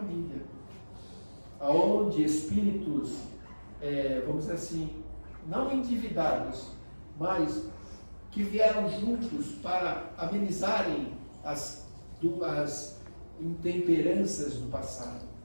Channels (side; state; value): both; inverted; correlation -1.00